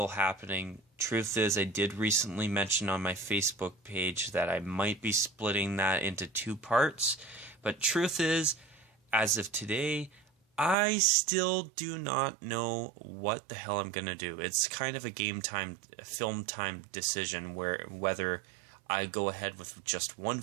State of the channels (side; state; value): left; drops out; at 10.8 s